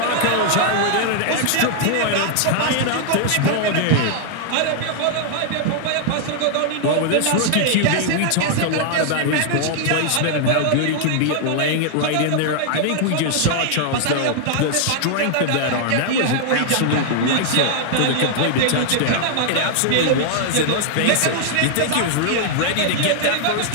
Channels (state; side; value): different; both; correlation -0.01